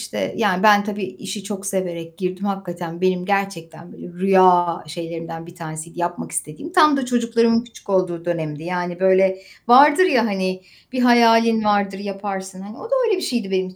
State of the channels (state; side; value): identical; both; correlation 1.00